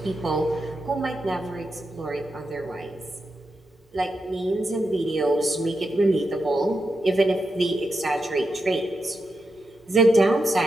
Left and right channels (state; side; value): normal; both; correlation 0.87